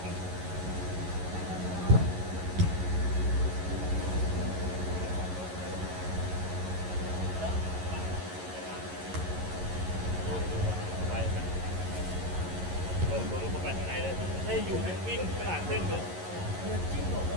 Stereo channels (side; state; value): left; late; 11 ms